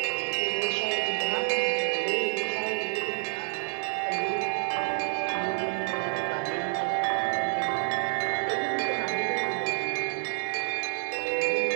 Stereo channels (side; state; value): left; silent; 59 dB below the other